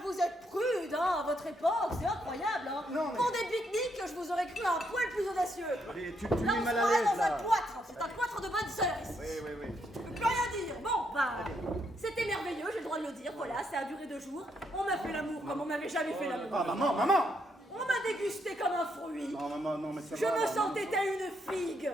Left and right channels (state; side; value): normal; both; correlation 0.76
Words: vous êtes prude, hein, à votre époque, c'est incroyable, hein. Non, mais- Pour des pique-niques, je vous aurais cru un poil plus audacieux. Allez, tu Là, mets on se mal à croirait l'aise, dans un là. cloître, c'est un cloître de bonne sœur ici. Oui. Je peux plus rien dire. Bon, bah, c'était merveilleux, j'ai le droit de le dire, voilà, ça a duré 2 jours. On m'a fait l'amour comme on n'avait jamais fait l'amour. Ah, maman! On m'a dégusté comme un fruit. Non, maman, non, mais ça Je va, me maman. sentais telle une figue